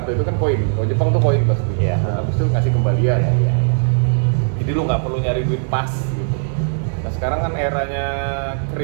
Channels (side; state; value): left; silent; digital silence